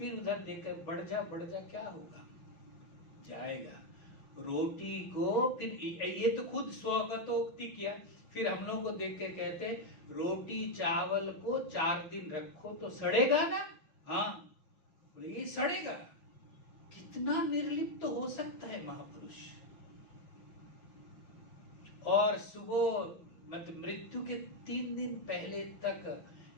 उधर देखकर बढ़ जा क्या होगा, जाएगा। रोटी को फिर ये तो खुद स्वगतोक्ति किया। फिर हम लोग को देख के कहते रोटी चावल को 4 दिन रखो तो सड़ेगा ना। हाँ बोले ये सड़ेगा। कितना निर्लिप्त तो हो सकता है महापुरुष। और सुबह मतलब मृत्यु के 3 दिन पहले तक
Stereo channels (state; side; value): late; right; 6.4 ms